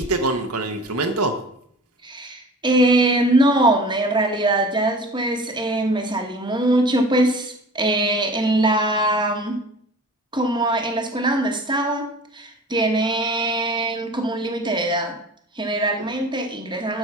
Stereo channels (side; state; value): both; normal; correlation 0.41